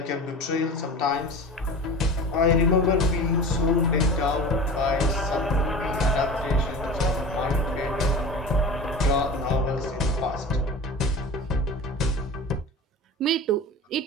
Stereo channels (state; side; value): normal; both; correlation 0.34